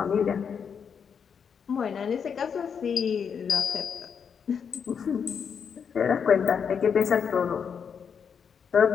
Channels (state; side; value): quieter; right; 6.9 dB